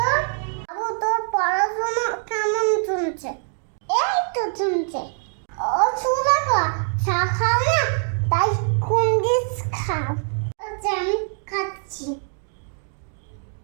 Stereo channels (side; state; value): left; silent; 56 dB below the other